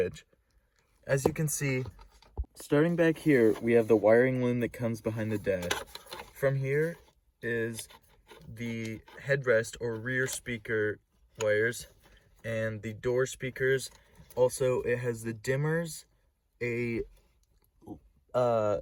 As you can see, starting back here, we have the wiring loom that comes behind the dash. From here is the headrest or rear speaker wires and the door speakers. Also, it has the dimmers, a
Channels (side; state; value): both; identical; correlation 1.00